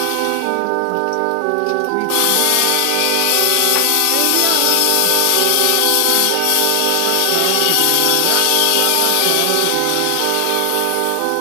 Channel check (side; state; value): both; different; correlation 0.00